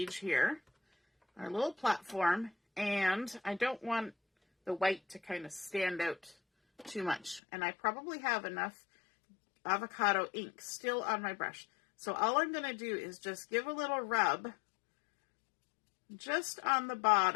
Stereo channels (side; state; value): right; drops out; at 7.4 s